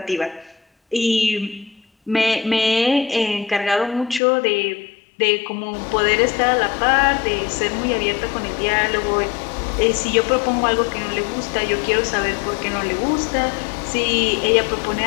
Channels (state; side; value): drops out; right; at 4.2 s